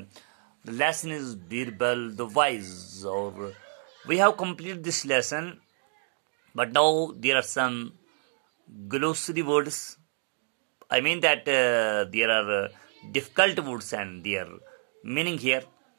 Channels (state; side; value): silent; left; 59 dB below the other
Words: the lesson is Birbal the Wise. Or we have completed this lesson, but now there are some glossary words. I mean that there are difficult words and their meaning here.